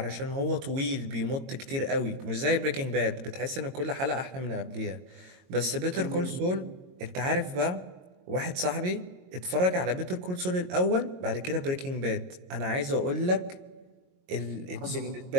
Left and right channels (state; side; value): late; left; 22 ms